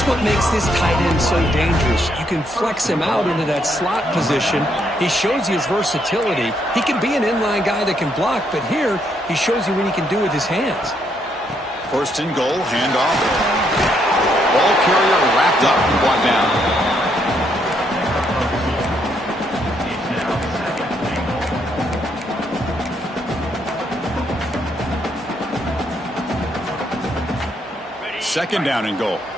what makes this tight end so dangerous. You can flex him out into that slot position. He shows you his versatility. He can be an inline guy that can block, but here he shows you what he can do with his hands. First and goal, handoff. Ball carrier wrapped up and brought down. Second down and goal.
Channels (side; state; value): both; normal; correlation 0.74